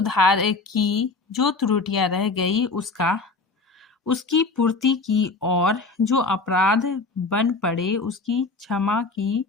की जो त्रुटियां रह गई उसकी पूर्ति की और जो अपराध बन पड़े उसकी क्षमा की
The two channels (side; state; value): right; quieter; 3.8 dB